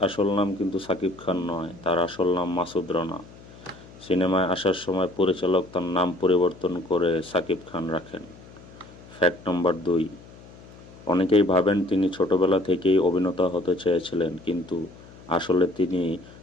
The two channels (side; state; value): left; noise; hum, 20 dB below the sound